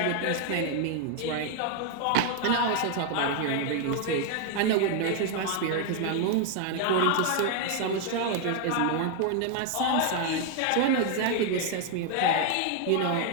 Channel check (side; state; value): both; different; correlation 0.00